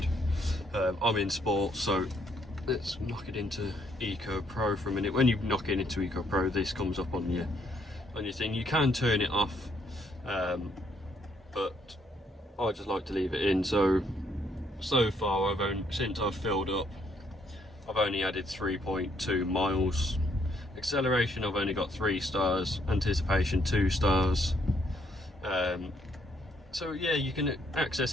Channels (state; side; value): normal; both; correlation 0.70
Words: I'm in Sport, so let's knock it into Eco Pro for a minute. When you knock it into Eco Pro, this comes up on your thing. You can turn it off, but I just like to leave it in. So far, since I've filled up, I've only added 3.2 miles. Acceleration, I've only got 3 stars. Anticipation, 2 stars. So yeah, you can